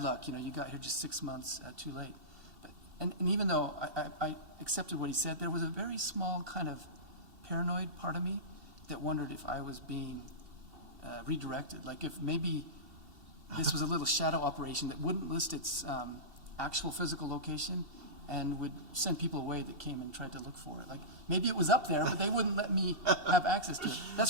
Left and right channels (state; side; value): late; left; 2.7 ms